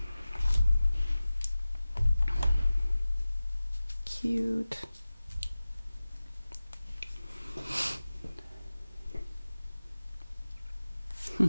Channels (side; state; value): both; inverted; correlation -0.96